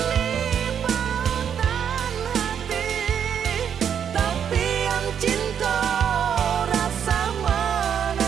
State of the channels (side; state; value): left; quieter; 8.3 dB